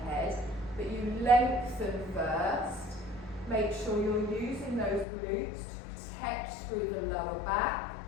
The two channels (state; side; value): drops out; right; at 5.1 s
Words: But you lengthen first. Make sure you're using those glutes to protect through the lower back.